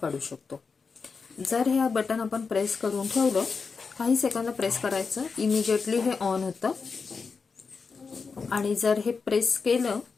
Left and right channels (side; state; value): right; quieter; 5.0 dB